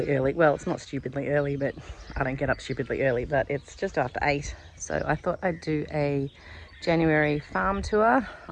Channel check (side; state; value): both; identical; correlation 1.00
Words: early. Well, it's not stupidly early, but I don't get up stupidly early, but it's just after 8. So I thought I'd do a January farm tour.